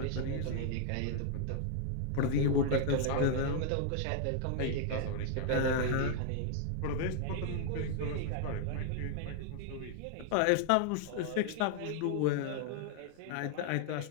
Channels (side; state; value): both; different; correlation -0.01